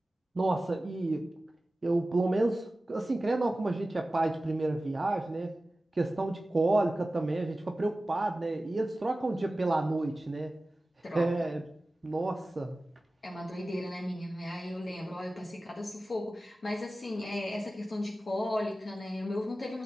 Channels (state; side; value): normal; both; correlation 0.96